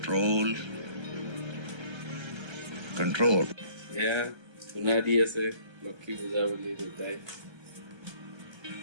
Control. এয়া ধূনা দি আছে লক্ষী পূজা বুলি দেউতাই।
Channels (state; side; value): late; left; 1.3 ms